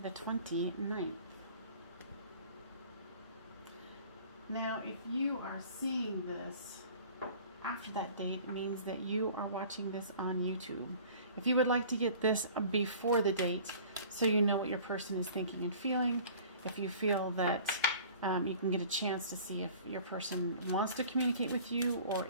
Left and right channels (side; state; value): both; inverted; correlation -0.47